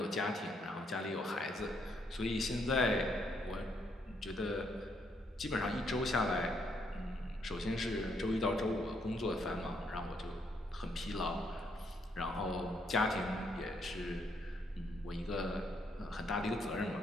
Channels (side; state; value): both; normal; correlation 0.73